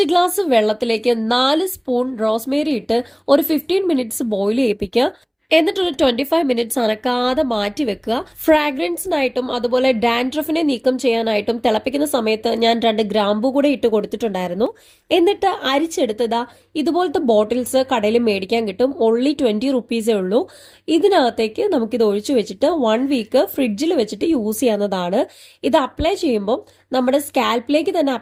ഗ്ലാസ് വെള്ളത്തിലേക്ക് 4 സ്പൂൺ റോസ്മേരി ഇട്ട് ഒരു 15 മിനിറ്റ്സ് ബോയിൽ ചെയ്യിപ്പിക്കുക. എന്നിട്ടൊരു 25 മിനിറ്റ്സ് അനക്കാതെ മാറ്റി വെക്കുക. ഫ്രാഗ്രൻസിനായിട്ടും അതുപോലെ ഡാൻഡ്രഫിനെ നീക്കം ചെയ്യാനായിട്ടും തിളപ്പിക്കുന്ന സമയത്ത് ഞാൻ 2 ഗ്രാമ്പു കൂടെ ഇട്ട് കൊടുത്തിട്ടുണ്ടായിരുന്നു. എന്നിട്ട് അരിച്ചെടുത്തതാ ഇതുപോലത്തെ ബോട്ടിൽസ് കടയിൽ മേടിക്കാൻ കിട്ടും. ഓൺലി 20 റുപ്പീസേ ഉള്ളൂ. ഇതിനകത്തേക്ക് നമുക്കിത് ഒഴിച്ചു വെച്ചിട്ട് 1 വീക്ക് ഫ്രിഡ്ജിൽ വെച്ചിട്ട് യൂസ് ചെയ്യാവുന്നതാണ്. ഇത് അപ്ലൈ ചെയ്യുമ്പോൾ നമ്മുടെ സ്കാൽപ്പിലേക്ക് തന്നെ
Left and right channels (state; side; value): identical; both; correlation 1.00